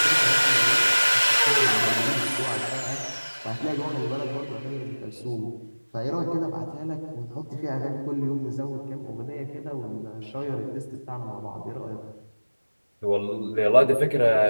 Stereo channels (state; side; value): inverted; both; correlation -1.00